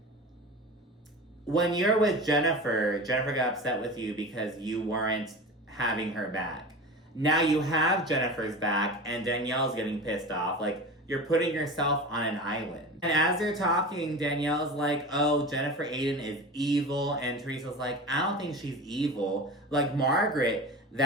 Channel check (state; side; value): normal; both; correlation 0.31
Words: when you're with Jennifer got upset with you because you weren't having her back. Now you have Jennifer's back and Danielle's getting pissed off. Like, you're putting yourself on an island. And as they're talking, Danielle's like, oh, Jennifer Aydin is evil. And Teresa's like, I don't think she's evil. Like, Margaret,